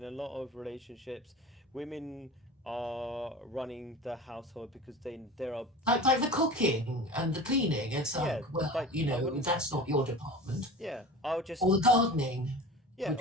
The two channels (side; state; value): both; normal; correlation 0.35